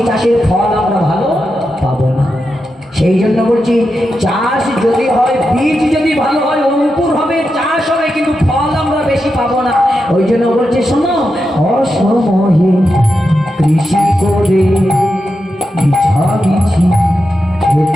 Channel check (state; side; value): normal; both; correlation 0.88